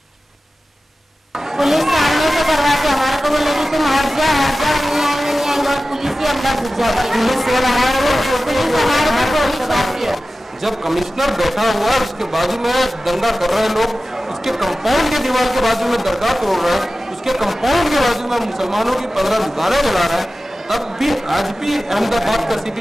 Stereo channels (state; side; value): normal; both; correlation 0.95